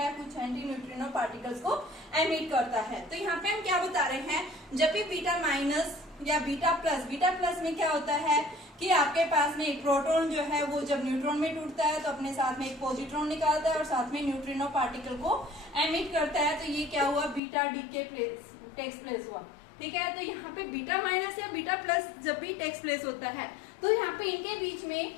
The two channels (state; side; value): drops out; right; at 17.4 s